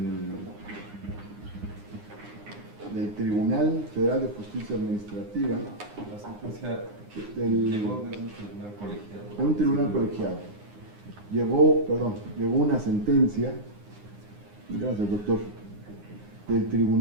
Tribunal Federal de Justicia Administrativa. La sentencia llegó de un tribunal colegiado. De un tribunal colegiado. Llegó una sentencia, gracias doctor, del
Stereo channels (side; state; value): left; late; 9.7 ms